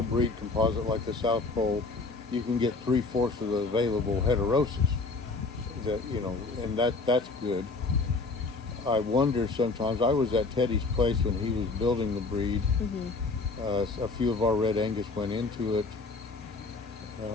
composite like the South Pole, you can get 3/4 of the available heterosis. And that's good. I wonder sometimes. I was at Teddy's place when he was building the breed. Mm-hmm. A few of our Red Angus went into it.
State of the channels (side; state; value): right; quieter; 3.7 dB